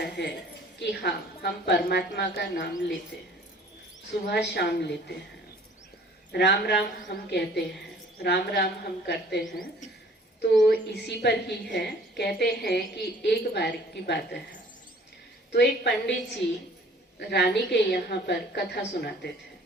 है कि हाँ, हम परमात्मा का नाम लेते हैं, सुबह शाम लेते हैं, राम राम हम कहते हैं, राम राम हम करते हैं। तो इसी पर ही है, कहते हैं कि एक बार की बात है, तो एक पंडित जी रानी के यहाँ पर कथा सुनाते थे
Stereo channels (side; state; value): both; normal; correlation 0.52